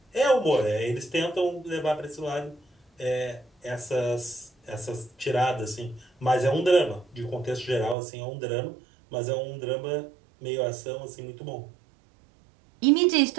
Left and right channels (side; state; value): left; drops out; at 8.0 s